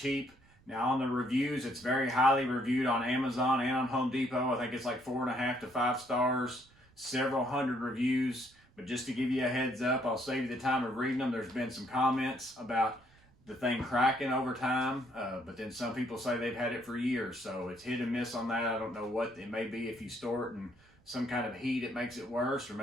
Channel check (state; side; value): noise; right; rumble, 29 dB below the sound